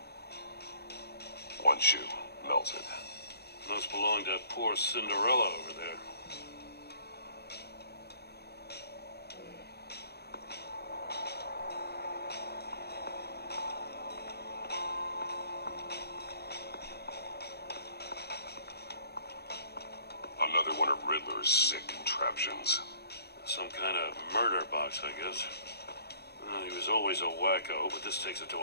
One shoe, melted. Must belong to poor Cinderella over there. Another one of Riddler's sick contraptions. Some kind of murder box, I guess. Well, he was always a wacko, but this takes it to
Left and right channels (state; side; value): late; right; 0.47 ms